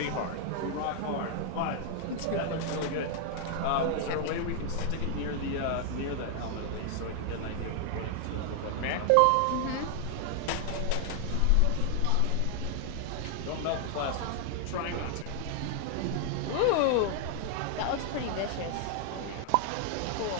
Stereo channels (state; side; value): different; both; correlation 0.00